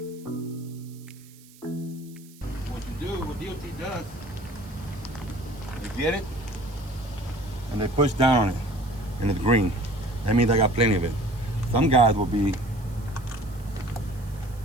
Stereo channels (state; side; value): noise; right; hiss, 24 dB below the sound